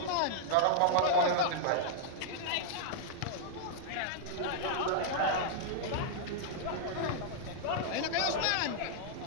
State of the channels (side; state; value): both; different; correlation -0.01